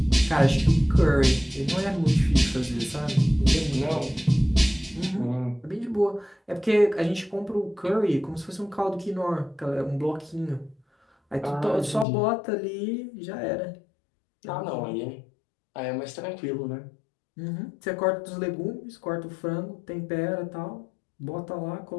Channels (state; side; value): drops out; right; at 12.1 s